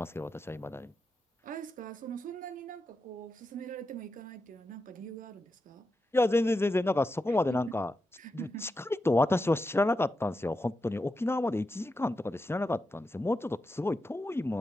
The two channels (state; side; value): normal; both; correlation 0.88